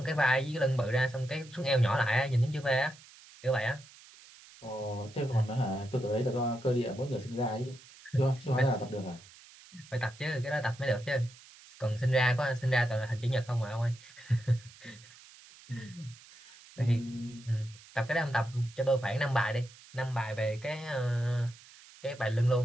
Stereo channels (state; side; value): noise; right; hiss, 22 dB below the sound